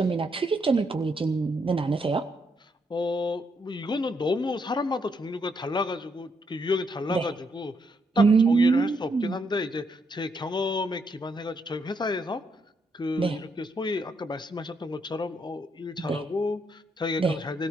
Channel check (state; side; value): normal; both; correlation 0.76